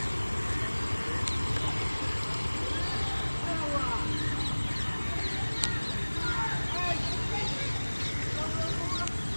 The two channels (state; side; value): inverted; both; correlation -1.00